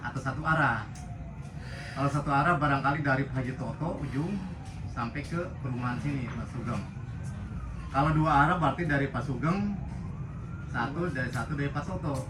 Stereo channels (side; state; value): both; identical; correlation 1.00